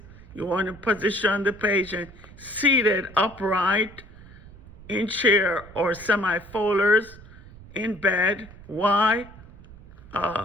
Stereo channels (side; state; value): right; noise; rumble, 20 dB below the sound